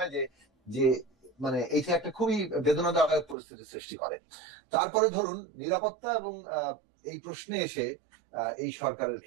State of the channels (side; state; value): left; drops out; at 3.4 s